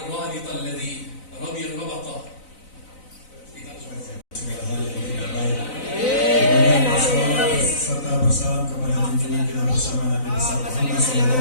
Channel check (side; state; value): right; late; 4.0 ms